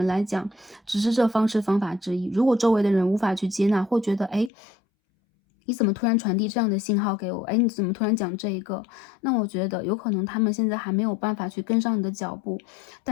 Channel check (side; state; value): right; drops out; at 4.5 s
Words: 来讲只是这方式方法之一。如果周围的人无法去接纳，或觉得你怎么突然传递这样的信号给我？你怎么突然讲这一个？那我觉得有可能他们现在还没有办法去跟上你的脚步，